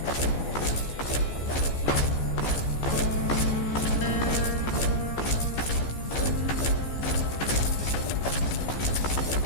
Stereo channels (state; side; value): late; right; 14 ms